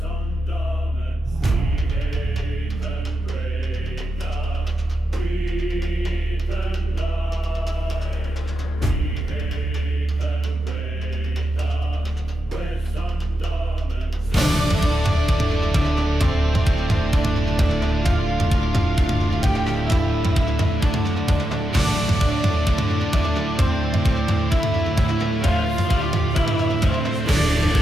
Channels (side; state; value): both; normal; correlation 0.87